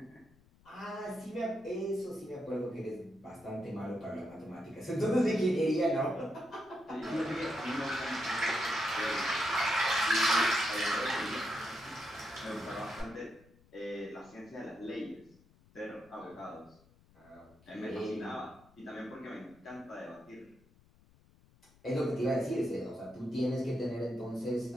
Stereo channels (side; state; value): left; noise; rumble, 28 dB below the sound